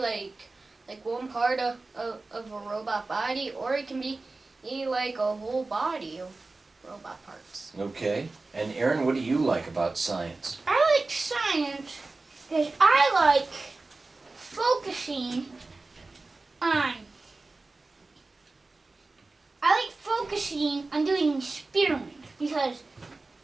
one part of a robot body, or it can be like a whole body of robot parts. Okay. And Aaron, what do you like about science? I like science because I like focusing on. Doing experiments because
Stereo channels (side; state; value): left; quieter; 3.5 dB